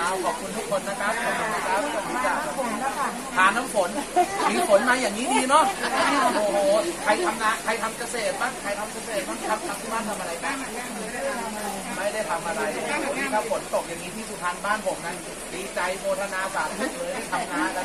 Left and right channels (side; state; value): both; identical; correlation 1.00